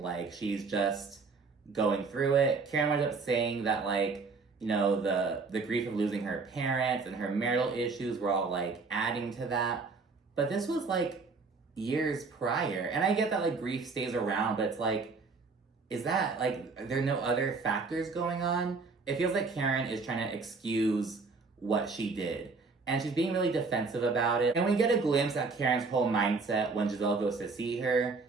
she's just going through it. Karen ended up saying that, like, the grief of losing her parents and her marital issues were all, like, adding to that. But this was, like, years prior. And I get that, like, grief stays around, but it's like, is that, like, are there no other factors going on? It feels like Karen is trying to excuse what she did. And she's being really defensive about it. And we get a glimpse at Karen's whole mindset when Giselle goes to see her.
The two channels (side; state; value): left; quieter; 4.3 dB